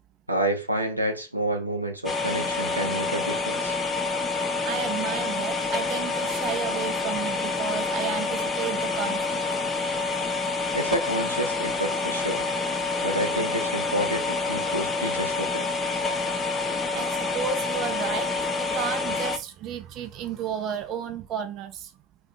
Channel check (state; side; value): normal; both; correlation 0.27